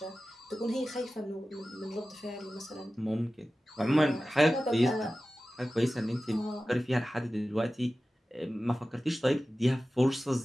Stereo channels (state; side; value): normal; both; correlation 0.95